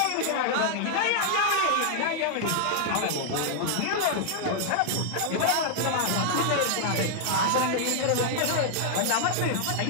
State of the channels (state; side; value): different; both; correlation -0.01